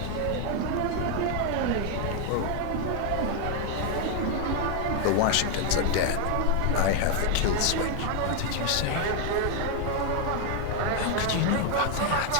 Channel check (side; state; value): both; different; correlation 0.00